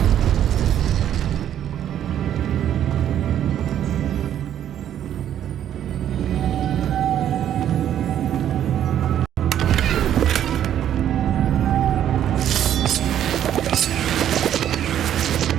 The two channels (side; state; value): left; quieter; 10.6 dB